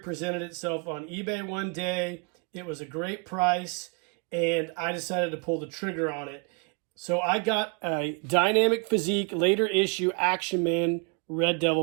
itself on eBay one day. It was a great price, and I decided to pull the trigger on it. So I got a Dynamic Physique later issue Action Man Red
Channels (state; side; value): quieter; left; 35.2 dB